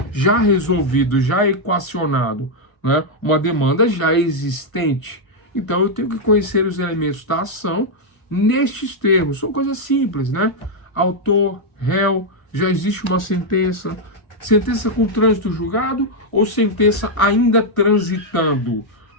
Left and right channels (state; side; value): late; right; 1.5 ms